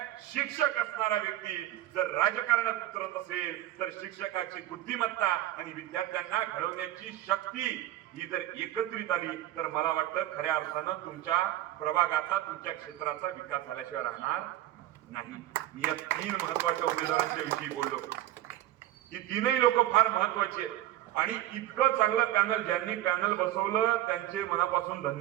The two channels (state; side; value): quieter; left; 13.7 dB